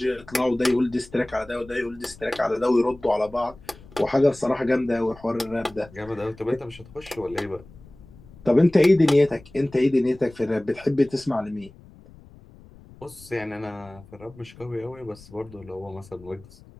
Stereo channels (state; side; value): noise; left; rumble, 22 dB below the sound